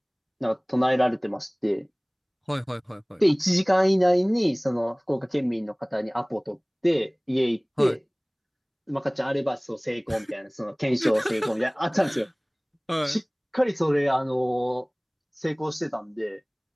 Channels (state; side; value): identical; both; correlation 1.00